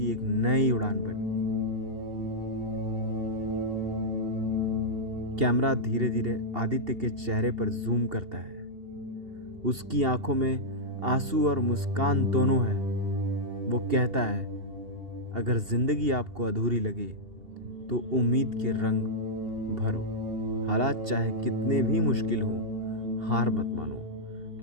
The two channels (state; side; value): late; left; 2.8 ms